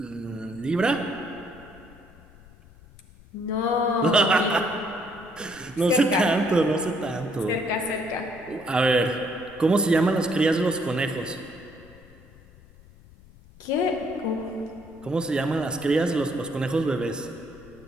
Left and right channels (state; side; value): noise; left; rumble, 24 dB below the sound